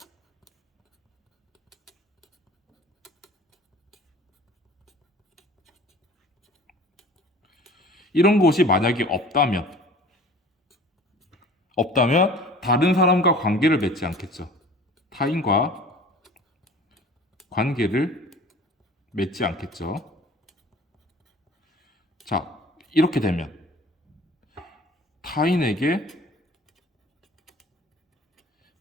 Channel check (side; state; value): both; normal; correlation 0.45